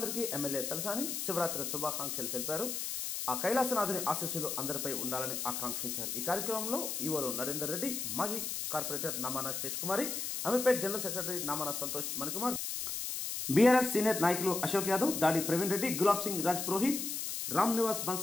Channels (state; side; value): noise; left; hiss, 3 dB below the sound